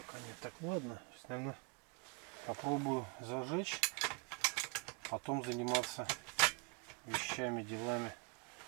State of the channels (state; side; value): quieter; left; 33.6 dB